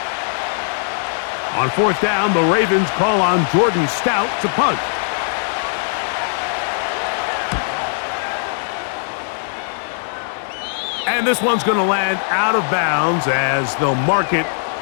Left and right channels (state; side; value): silent; right; digital silence